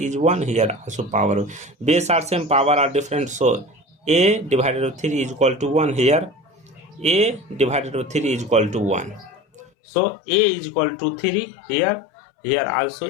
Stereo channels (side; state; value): right; drops out; at 9.6 s